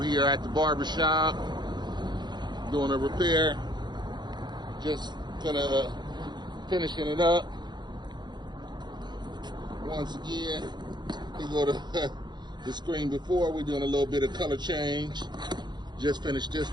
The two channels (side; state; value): left; late; 0.21 ms